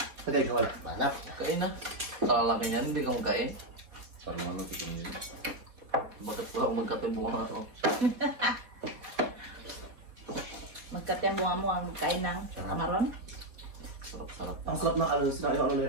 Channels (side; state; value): left; late; 4.2 ms